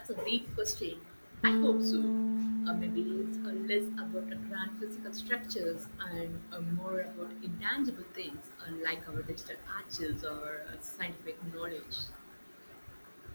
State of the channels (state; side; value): inverted; both; correlation -1.00